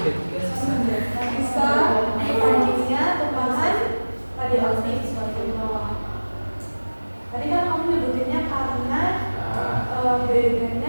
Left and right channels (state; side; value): inverted; both; correlation -1.00